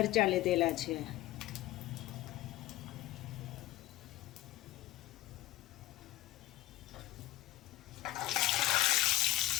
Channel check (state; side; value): quieter; right; 16.6 dB